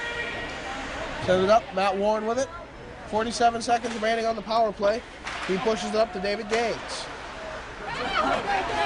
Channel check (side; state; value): both; identical; correlation 1.00